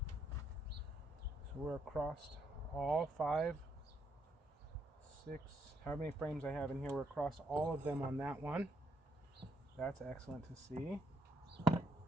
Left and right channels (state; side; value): normal; both; correlation 0.74